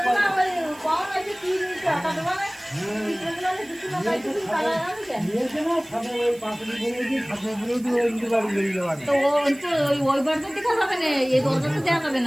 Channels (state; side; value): noise; right; hiss, 23 dB below the sound